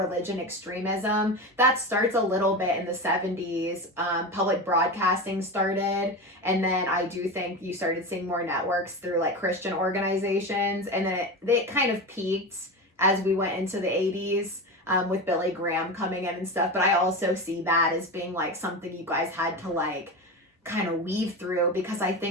extremism. That starts a little bit in the 70s. Public broadcasting started. And then I do think you started seeing more networks through like Christian organizations. And then it kind of peaked as we went into the 80s. With Billy Graham coming in and stuff. But I also see that as being like something you guys had to like kind of weave through, because I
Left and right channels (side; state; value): both; normal; correlation 0.23